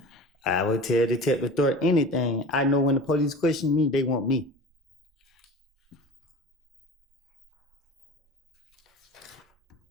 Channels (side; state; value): both; normal; correlation 0.37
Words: I would tell Detective Thorpe anything. I know when the police question me, they want me.